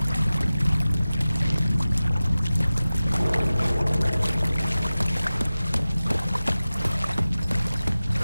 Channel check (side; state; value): both; inverted; correlation -0.96